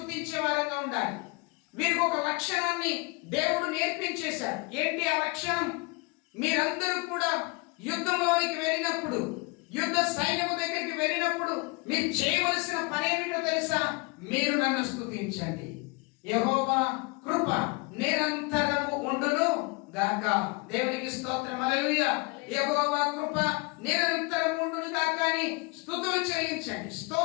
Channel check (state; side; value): quieter; right; 28.1 dB